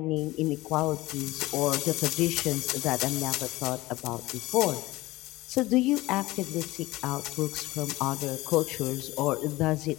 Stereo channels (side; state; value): right; quieter; 19.1 dB